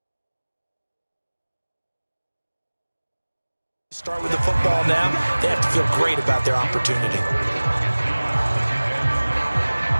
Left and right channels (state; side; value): inverted; both; correlation -1.00